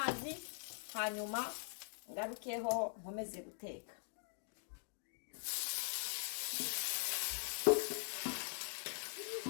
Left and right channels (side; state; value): right; silent; digital silence